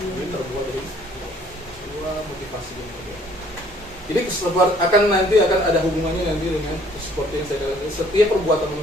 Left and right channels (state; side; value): normal; both; correlation 0.59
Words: terbuat dari 2 motivasi yang berbeda. Jadi nanti akan ada hubungannya nanti dengan seperti yang saya katakan, setiap perbuatan